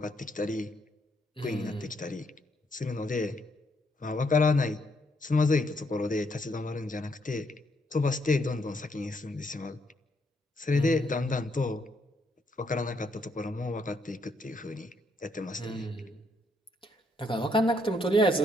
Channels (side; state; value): both; normal; correlation 0.74